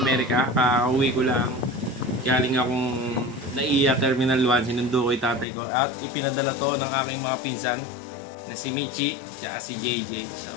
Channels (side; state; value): right; drops out; at 5.5 s